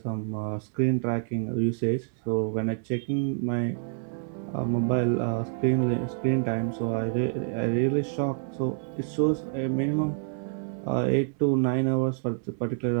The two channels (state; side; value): silent; left; digital silence